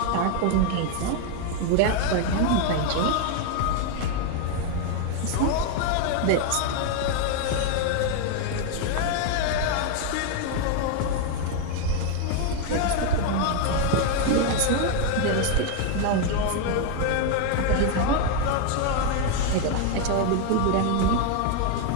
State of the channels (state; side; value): different; both; correlation 0.01